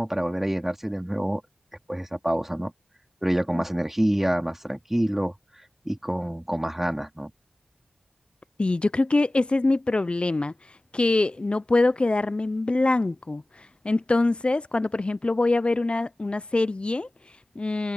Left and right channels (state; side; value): normal; both; correlation 0.97